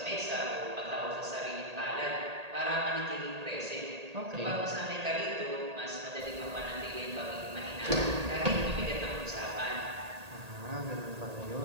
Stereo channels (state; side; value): late; left; 1.8 ms